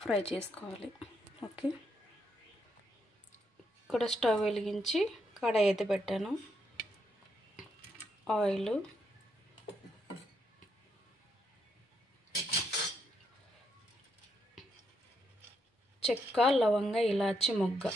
ఫ్రై చేసుకోవాలి. ఓకే, ఇక్కడ స్టవ్ వెలిగించి కడాయి అయితే పెట్టాను. ఆయిల్, చెక్క, లవంగ, ఇలాచి, మొగ్గ,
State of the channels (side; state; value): both; normal; correlation 0.78